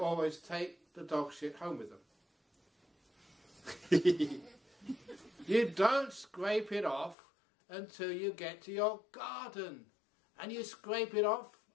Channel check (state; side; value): drops out; right; at 7.2 s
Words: take the dog shit home with them. You don't scrape it off until you get to your garden, and you scrape it off